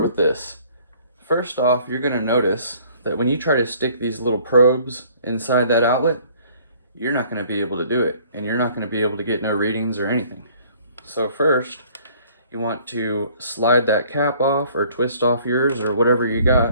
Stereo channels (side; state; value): both; inverted; correlation -0.57